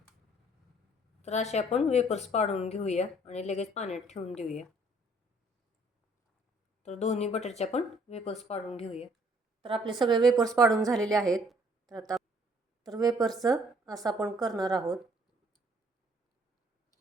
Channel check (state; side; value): normal; both; correlation 0.61